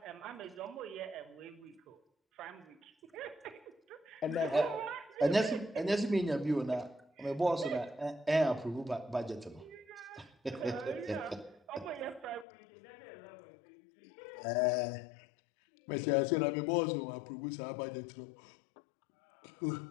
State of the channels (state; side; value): drops out; right; at 12.5 s